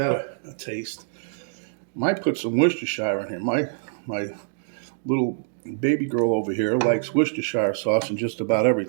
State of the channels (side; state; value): left; silent; digital silence